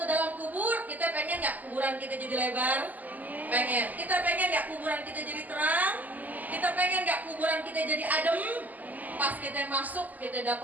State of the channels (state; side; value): late; left; 0.081 ms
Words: dalam kubur, kita pengen nggak kuburan kita jadi lebar? Pengen. Kita pengen nggak kuburan kita jadi terang? Kita pengen nggak kuburan kita jadi adem? Pas kita masuk, kita